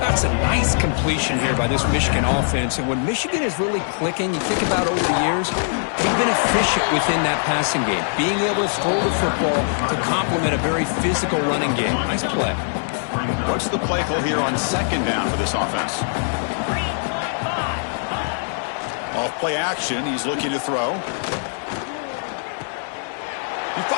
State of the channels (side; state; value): right; silent; digital silence